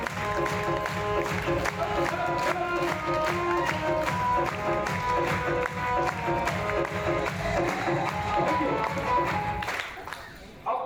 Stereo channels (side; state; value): both; identical; correlation 1.00